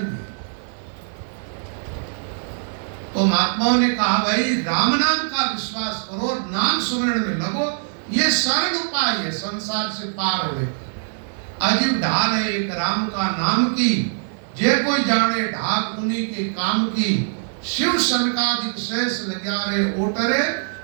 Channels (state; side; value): silent; left; 57 dB below the other